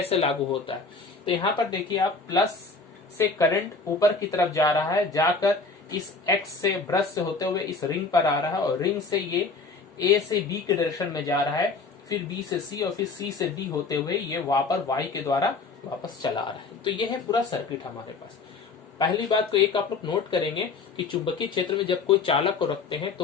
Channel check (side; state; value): right; quieter; 4.2 dB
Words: लागू होता है। तो यहाँ पर देखिए आप, प्लस से करंट ऊपर की तरफ जा रहा है, जाकर इस X से ब्रश से होते हुए इस रिंग पर आ रहा है और रिंग से ये A से B के डायरेक्शन में जा रहा है, फिर B से C और फिर C से D होते हुए ये वापस Y के द्वारा वापस चला आ रहा है। तो ये है पूरा सर्किट हमारे पास। पहली बात को एक आप लोग नोट करेंगे कि चुंबकीय क्षेत्र में जब कोई चालक को रखते हैं